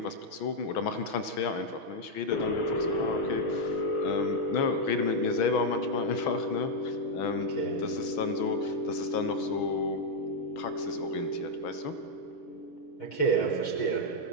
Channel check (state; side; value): late; right; 6.2 ms